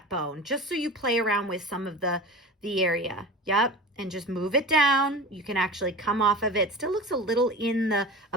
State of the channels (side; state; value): both; normal; correlation 0.33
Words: bone, just so you play around with some of the area. Yep. And just move it down. You can actually come off of it. Still looks a little in the